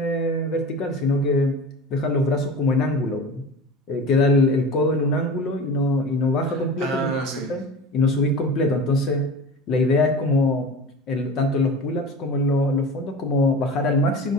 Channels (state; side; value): normal; both; correlation 0.34